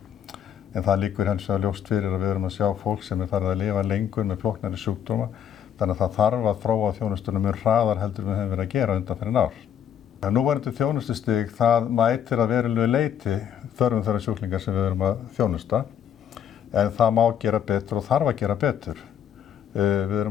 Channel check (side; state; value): right; quieter; 9.2 dB